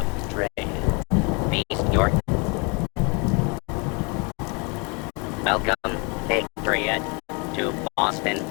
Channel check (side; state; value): right; quieter; 32.3 dB